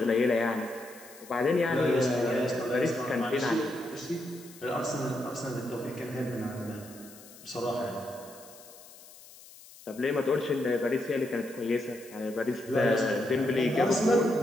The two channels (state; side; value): noise; left; hiss, 20 dB below the sound